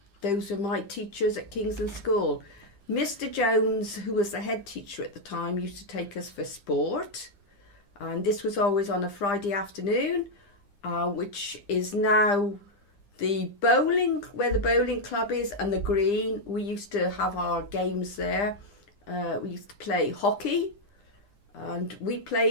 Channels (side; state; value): right; late; 9.9 ms